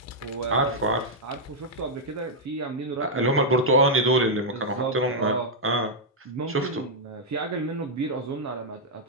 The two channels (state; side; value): normal; both; correlation -0.04